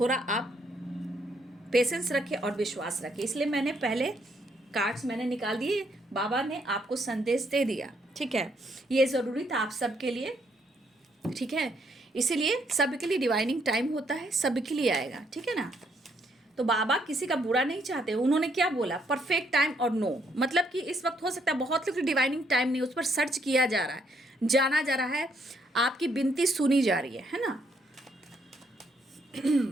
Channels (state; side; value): normal; both; correlation 0.72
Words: आप पेशेंस रखें और विश्वास रखें। इसलिए मैंने पहले कार्ड्स मैंने निकाल दिए, बाबा ने आपको संदेश दे दिया, ठीक है। ये ज़रूरी था आप सबके लिए, ठीक है। इसीलिए सबके लिए डिवाइनिंग टाइम होता है, सबके लिए आएगा, ठीक है ना। तो बाबा किसी का बुरा नहीं चाहते। उन्होंने क्या बोला, परफेक्ट टाइम और नो, मतलब कि इस वक्त हो सकता है बहुत लोग डिवाइनिंग टाइम नहीं, उस पर सर्च किया जा रहा है, जाना जा रहा है, आपकी विनती सुनी जा रही है ना।